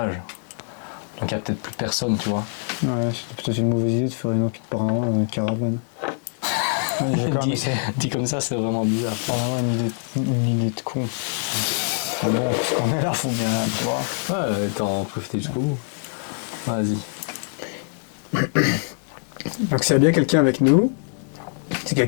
Donc il n'y a peut-être plus personne, tu vois. Ouais, c'était peut-être une mauvaise idée de faire une enquête paranormale dans une caravane. Dit comme ça, c'est vraiment bizarre. Ah ouais, une idée de con. Mais bon, puisqu'on est là, faut bien, tu vois. Ouais, t'en profiter jusqu'au bout. Vas-y. Donc s'il y a bien quelqu'un avec nous, si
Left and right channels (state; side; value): silent; right; digital silence